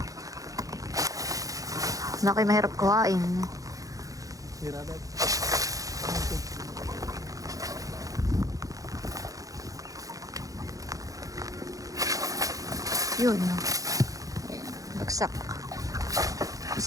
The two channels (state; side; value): late; left; 0.17 ms